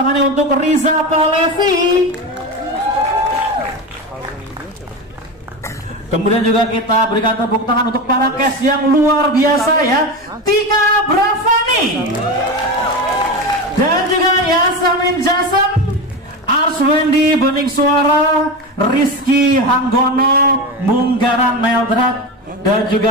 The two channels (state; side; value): normal; both; correlation 0.22